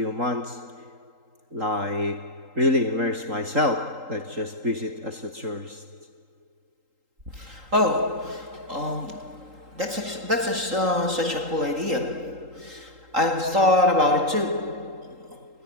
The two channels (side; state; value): left; late; 3.8 ms